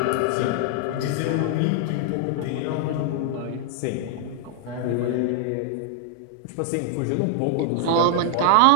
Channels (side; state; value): both; different; correlation 0.00